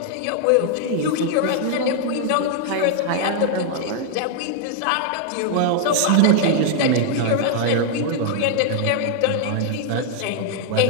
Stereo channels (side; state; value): both; different; correlation 0.00